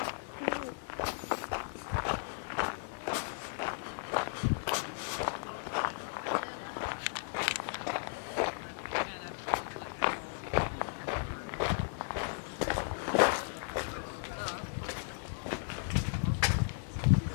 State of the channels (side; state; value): right; silent; digital silence